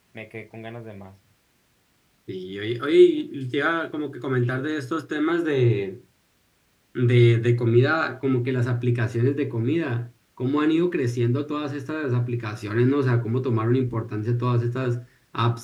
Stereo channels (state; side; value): identical; both; correlation 1.00